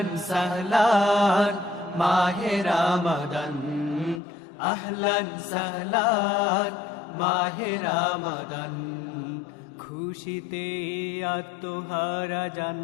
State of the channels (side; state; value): right; drops out; at 4.2 s